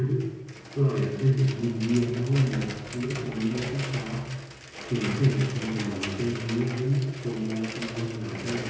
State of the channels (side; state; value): both; identical; correlation 1.00